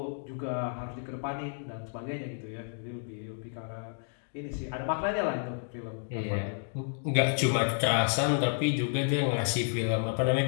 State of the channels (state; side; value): silent; right; digital silence